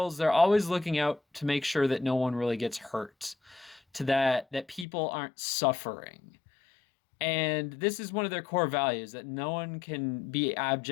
they're always looking out to make sure that no one really gets hurt, to that people aren't suffering. And this is one of their core values that no one can be in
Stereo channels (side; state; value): right; drops out; at 4.9 s